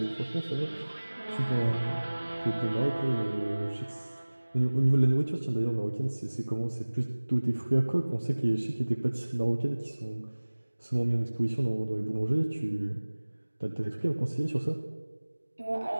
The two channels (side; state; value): both; inverted; correlation -1.00